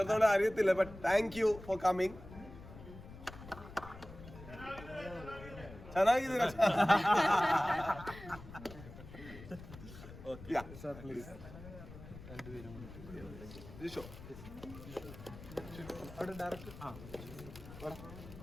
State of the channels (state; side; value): noise; left; rumble, 15 dB below the sound